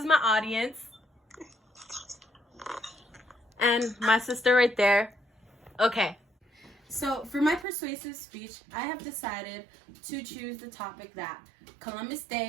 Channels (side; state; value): left; drops out; at 7.7 s